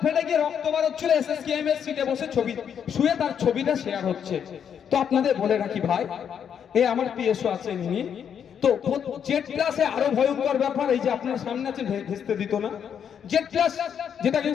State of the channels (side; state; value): right; quieter; 8.1 dB